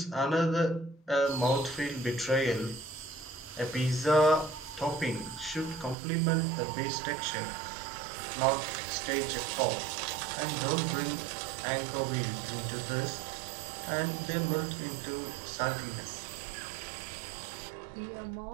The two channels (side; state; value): left; drops out; at 6.0 s